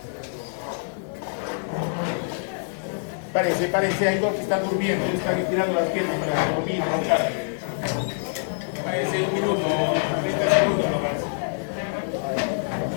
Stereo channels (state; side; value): silent; right; digital silence